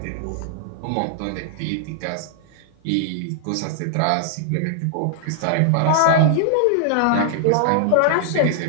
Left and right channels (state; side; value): different; both; correlation -0.01